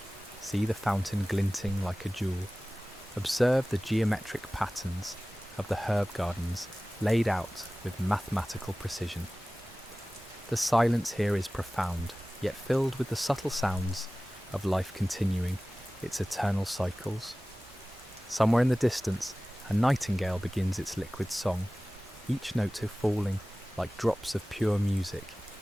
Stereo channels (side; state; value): both; normal; correlation 0.97